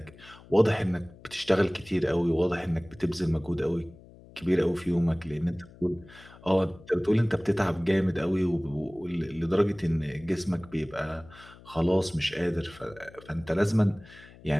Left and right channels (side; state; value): left; noise; hum, 22 dB below the sound